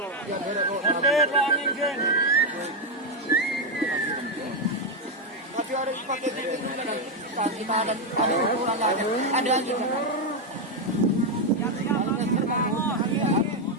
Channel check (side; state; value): both; normal; correlation 0.04